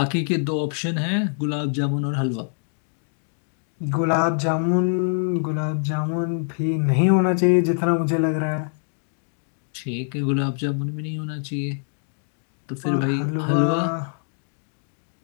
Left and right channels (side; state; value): right; silent; 62 dB below the other